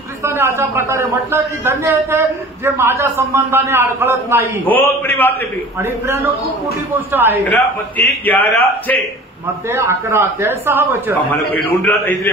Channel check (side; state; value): both; normal; correlation 0.43